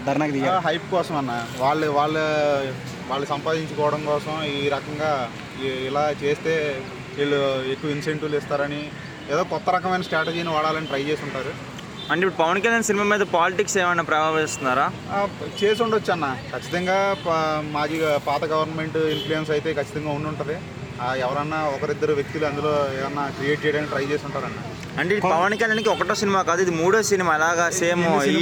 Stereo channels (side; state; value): both; identical; correlation 1.00